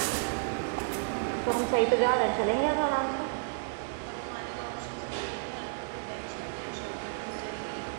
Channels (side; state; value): left; silent; digital silence